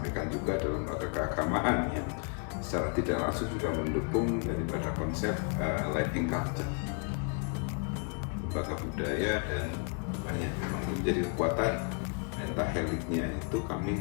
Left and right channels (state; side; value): quieter; right; 38.9 dB